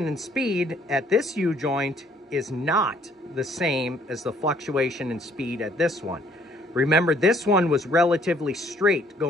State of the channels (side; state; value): both; normal; correlation 0.63